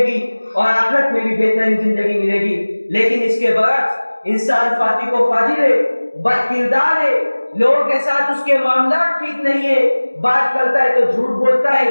گی اور آخرت میں بھی بہترین زندگی ملے گی۔ لیکن اس کے برعکس انسان فاسق و فاجر ہے، بد کردار ہے، لوگوں کے ساتھ اس کے معاملات ٹھیک نہیں ہے، بات کرتا ہے تو جھوٹ بولتا ہے،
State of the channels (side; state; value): both; inverted; correlation -1.00